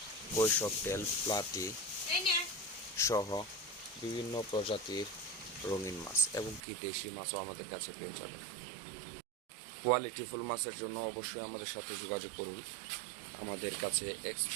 কৈশকটেল, প্লাটি সহ বিভিন্ন প্রজাতির রঙিন মাছ এবং কি দেশি মাছও আমাদের কাছে পেয়ে যাবেন। কোয়ালিটিফুল মাছের জন্য অবশ্যই আমাদের সাথে যোগাযোগ করুন। আমাদের কাছে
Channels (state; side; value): drops out; left; at 6.6 s